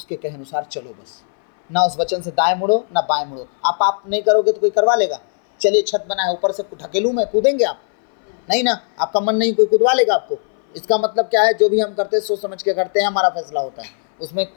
कहे अनुसार चलो, बस। ना उस वचन से दाएं मुड़ो ना बाएं मुड़ो। आप नहीं करोगे तो कोई करवा लेगा। चलिए छत बना है, ऊपर से ढकेलूं मैं, कूदेंगे आप? नहीं ना, आपका मन नहीं, कोई कूदवा लेगा आपको। इसका मतलब क्या है? जो भी हम करते हैं सोच समझ के करते हैं, हमारा फैसला होता है, उसमें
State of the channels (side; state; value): right; silent; 61 dB below the other